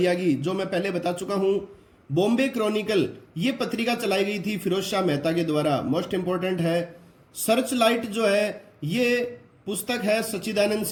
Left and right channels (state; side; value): identical; both; correlation 1.00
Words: की, जो मैं पहले बता चुका हूं। बॉम्बे क्रॉनिकल ये पत्रिका चलाई गई थी फिरोज शाह मेहता के द्वारा, मोस्ट इंपॉर्टेंट है। सर्च लाइट जो है ये पुस्तक है सच्चिदानंद